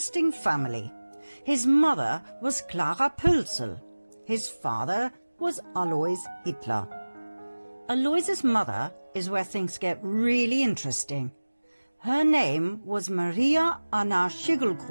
family. His mother was Clara Pölzl. His father was Alois Hitler. Alois's mother is where things get really interesting. Her name was Maria Anna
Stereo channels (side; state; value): both; inverted; correlation -1.00